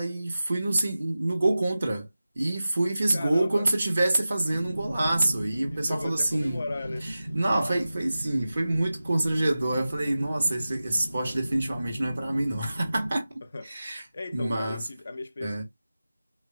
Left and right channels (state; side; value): inverted; both; correlation -0.95